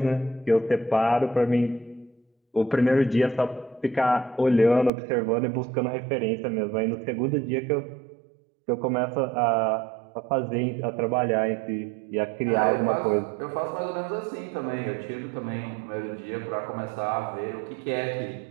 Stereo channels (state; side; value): drops out; left; at 4.9 s